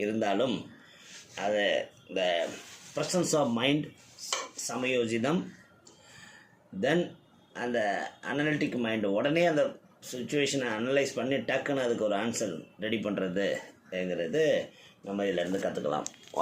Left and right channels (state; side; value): identical; both; correlation 1.00